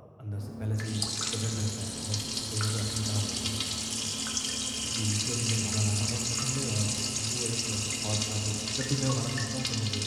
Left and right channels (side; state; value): both; identical; correlation 1.00